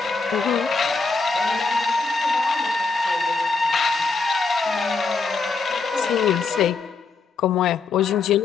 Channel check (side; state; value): right; quieter; 4.3 dB